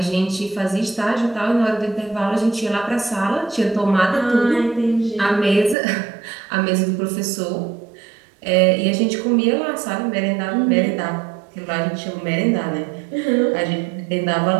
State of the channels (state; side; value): drops out; left; at 5.8 s